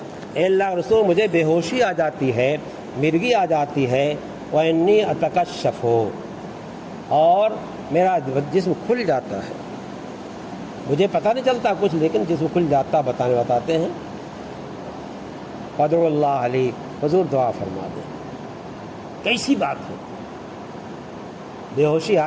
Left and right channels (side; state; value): both; identical; correlation 1.00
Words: اے اللہ رسول مجھے بے ہوشی آ جاتی ہے، مرگی آ جاتی ہے، وانی اتکشف، اور میرا جسم کھل جاتا ہے، مجھے پتہ نہیں چلتا کچھ لیکن جسم کھل جاتا، بتاتے ہیں۔ فادعوا اللہ علی، حضور دعا فرما دیں۔ کیسی بات ہے، بے ہوشی